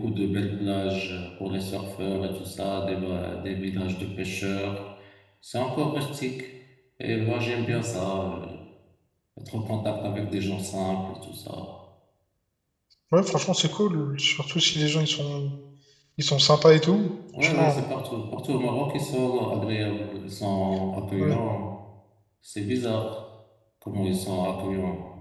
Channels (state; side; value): identical; both; correlation 1.00